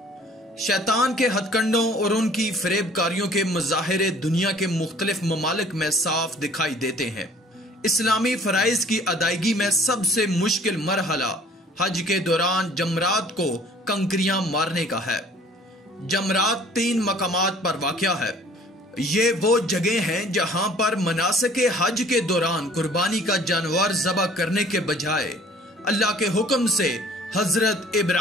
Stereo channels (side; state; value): both; normal; correlation 0.53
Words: شیطان کے ہتھ کنڈوں اور ان کی فریب کاریوں کے مظاہرے دنیا کے مختلف ممالک میں صاف دکھائی دیتے ہیں۔ اسلامی فرائض کی ادائیگی میں سب سے مشکل مرحلہ حج کے دوران جمرات کو کنکریاں مارنے کا ہے۔ جمرات 3 مقامات پر واقع ہے۔ یہ وہ جگہ ہیں جہاں پر مناسک حج کے دوران قربانی کا جانور ذبح کرنے کے بجائے اللہ کے حکم سے حضرت